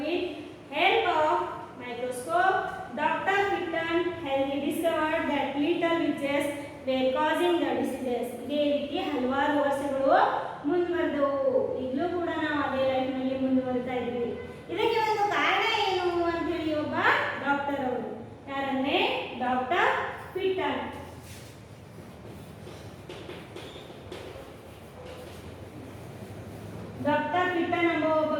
help of microscope Dr. Pitton had discovered that little witches were causing the diseases. ಇದೇ ರೀತಿ ಹಲವಾರು ವರ್ಷಗಳು ಮುಂದುವರೆದವು. ಈಗಲೂ ಕೂಡ ನಾವು ಅದೇ ಲೈಫ್ ನಲ್ಲಿ ಮುಂದುವರಿತಾ ಇದ್ದೀವಿ. ಇದಕ್ಕೆ ಒಂದು ಕಾರಣ ಏನು ಅಂತ ಹೇಳಿ ಒಬ್ಬ ಡಾಕ್ಟರ್ ಅವರು, ಯಾರಂದ್ರೆ ಡಾಕ್ಟರ್ ಪಿಟನ್. ಡಾಕ್ಟರ್ ಪಿಟನ್ ಎಂಬ ಒಬ್ಬ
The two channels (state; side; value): identical; both; correlation 1.00